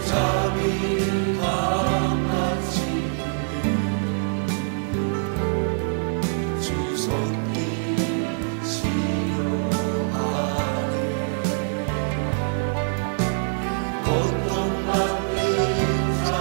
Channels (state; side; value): silent; left; digital silence